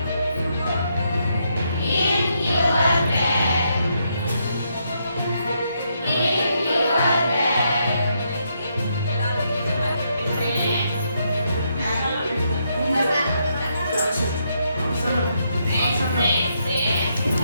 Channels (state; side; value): inverted; both; correlation -0.78